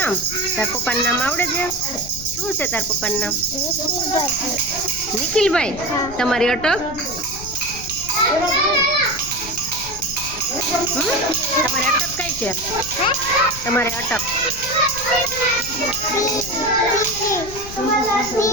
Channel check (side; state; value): left; noise; rumble, 13 dB below the sound